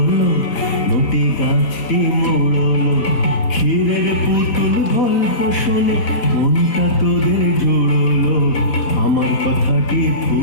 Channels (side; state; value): right; late; 4.0 ms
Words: মোটে গাছটি মোড়লো। ক্ষীরের পুতুল গল্প শুনে মনটা তোদের জুড়লো। আমার কথাটি